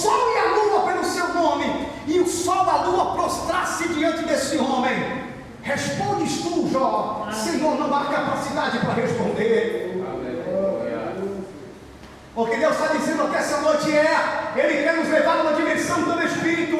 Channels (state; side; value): identical; both; correlation 1.00